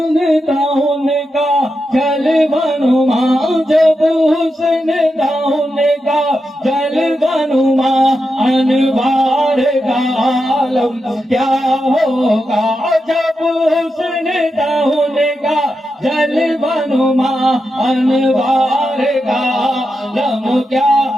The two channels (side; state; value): both; normal; correlation 0.87